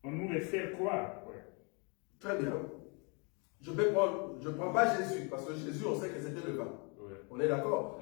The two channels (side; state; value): right; quieter; 33.6 dB